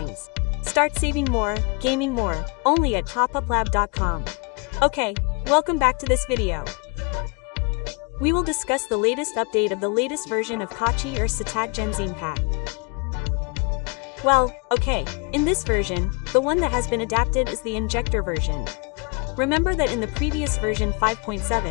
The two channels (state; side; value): quieter; right; 31.1 dB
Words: Start saving more, gaming more, only at TopUpLab.com. Okay, welcome back to this video. We will discuss the latest update of the latest version of Kwachi or SetUp Genshin Impact. Well, okay, in this version, the one that has been adapted is the Injector version. Remember that in the previous version